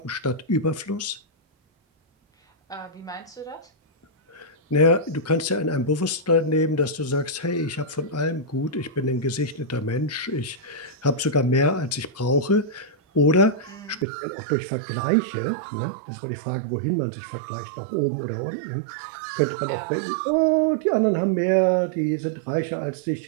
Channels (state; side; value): drops out; left; at 14.1 s